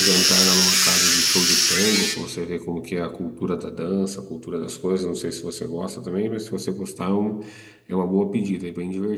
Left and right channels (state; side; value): identical; both; correlation 1.00